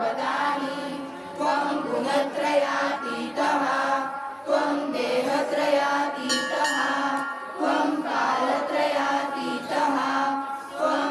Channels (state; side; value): identical; both; correlation 1.00